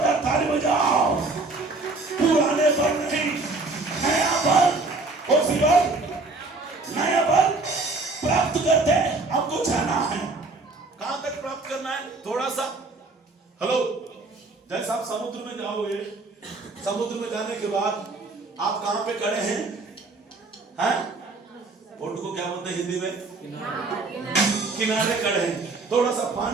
ताली बजाओ। पुराने बल नहीं, नया बल, उसी बल, नया बल प्राप्त करते हमको जाना है। कहां तक प्राप्त करना है? थोड़ा सा हेलो, जैसे आप समुद्र में जाओगे, समुद्र में जाने के बाद आप कहां पे खड़े हैं? हैं? बोट को क्या बोलते हैं हिंदी में? किनारे खड़े हैं। थोड़ा सा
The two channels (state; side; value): quieter; left; 3.5 dB